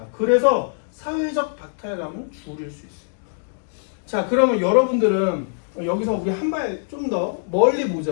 그래서 사회적 박탈감은 줄일 수 있어요. 자, 그러면 여러분들은 여기서 우리 한 발 좀 더 멀리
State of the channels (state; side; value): silent; right; digital silence